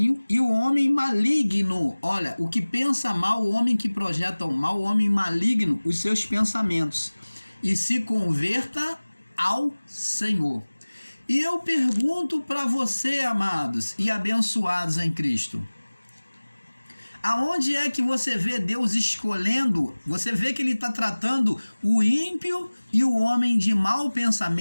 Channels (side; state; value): both; inverted; correlation -1.00